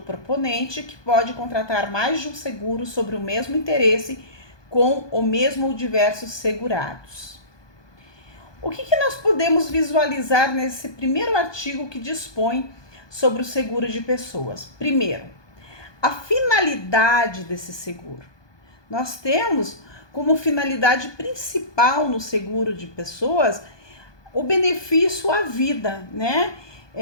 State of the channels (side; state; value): right; late; 1.2 ms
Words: proponente, que pode contratar mais de um seguro sobre o mesmo interesse com o mesmo ou diversos segurados. O que nós podemos visualizar nesse primeiro artigo que dispõe sobre o seguro de pessoas? Primeiro, a finalidade desse seguro. Nós temos como finalidade principal no seguro de pessoas o benefício à vida, né?